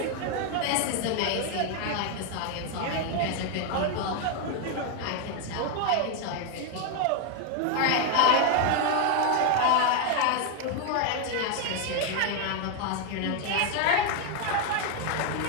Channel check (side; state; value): both; different; correlation 0.01